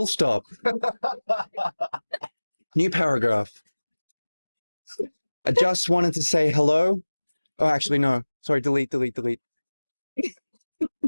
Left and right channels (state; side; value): inverted; both; correlation -1.00